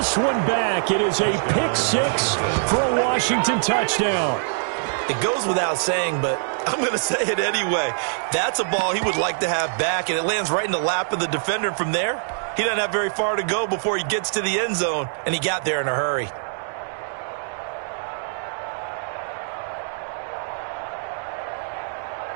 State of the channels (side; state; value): left; silent; digital silence